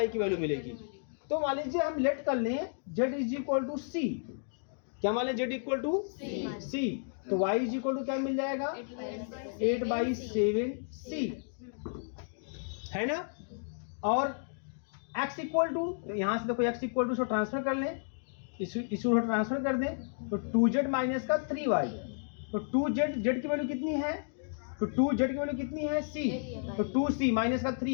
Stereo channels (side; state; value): right; silent; digital silence